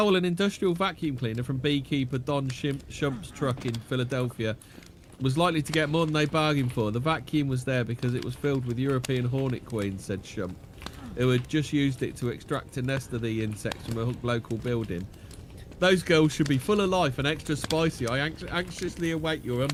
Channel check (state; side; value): identical; both; correlation 1.00